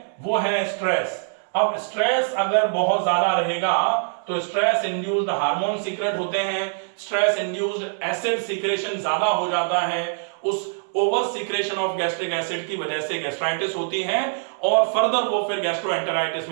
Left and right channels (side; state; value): left; silent; 63 dB below the other